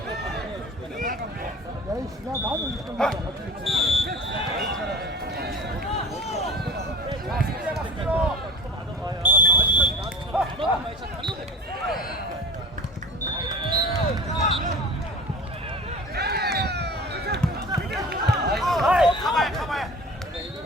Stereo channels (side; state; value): both; normal; correlation 0.38